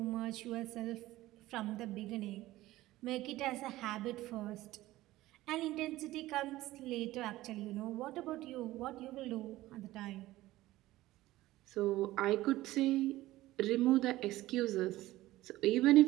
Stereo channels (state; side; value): quieter; left; 16.8 dB